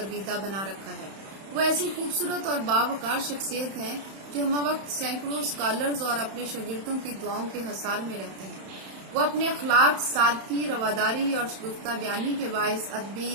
بنا رکھا ہے۔ وہ ایسی خوبصورت اور باوقار شخصیت ہیں جو ہمہ وقت سینکڑوں اسکالرز اور اپنے شاگردوں کی دعاؤں کے حصار میں رہتے ہیں۔ وہ اپنے اخلاق، سادگی، رواداری اور شگفتہ بیانی کے باعث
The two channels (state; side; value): late; left; 31 ms